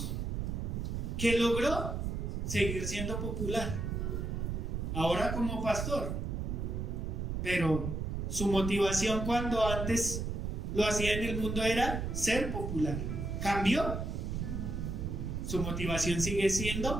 que logró seguir siendo popular, ahora como pastor, pero su motivación cuando antes lo hacía en el mundo era ser popular. ¿Cambió? Su motivación sigue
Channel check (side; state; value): right; noise; rumble, 2 dB below the sound